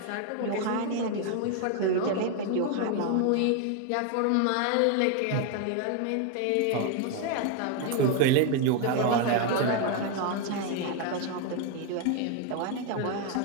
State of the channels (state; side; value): different; both; correlation 0.01